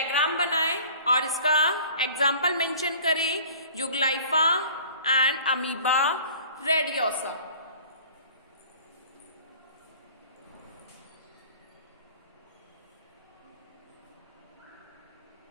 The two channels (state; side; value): inverted; both; correlation -0.46